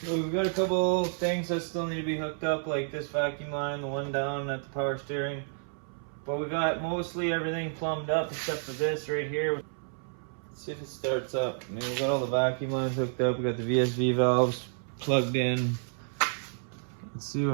We've got a couple things that still need to be hooked up, like this vacuum line, the one down at the power steering. But we got mostly everything plumbed up except for this right here. Let's see if it starts up. I mean, we got all the vacuum lines hooked up. We got the VSV valves plugged in. Let's see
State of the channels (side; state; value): left; silent; 58 dB below the other